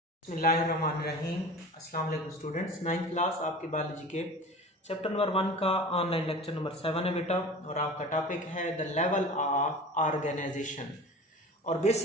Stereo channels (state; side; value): normal; both; correlation 0.37